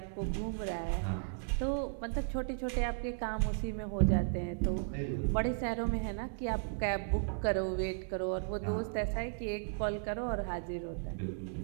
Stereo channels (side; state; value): left; silent; digital silence